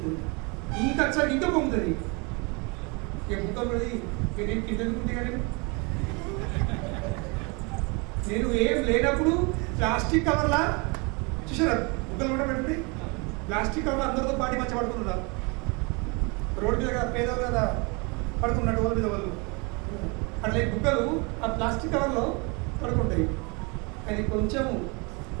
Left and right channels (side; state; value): left; quieter; 30.2 dB